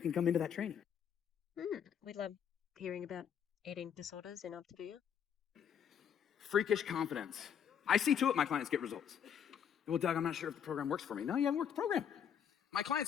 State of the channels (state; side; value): quieter; right; 8.3 dB